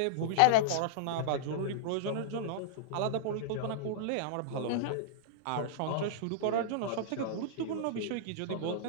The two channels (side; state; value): both; different; correlation -0.02